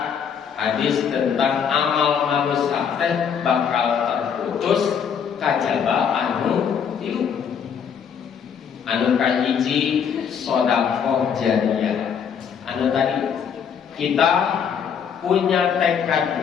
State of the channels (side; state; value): right; quieter; 7.4 dB